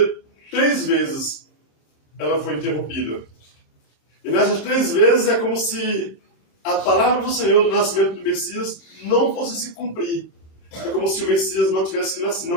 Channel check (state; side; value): late; right; 26 ms